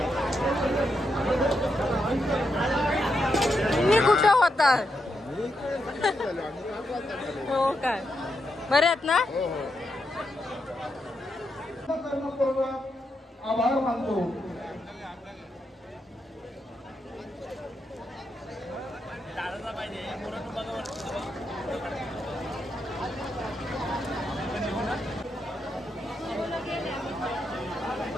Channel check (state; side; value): normal; both; correlation 0.83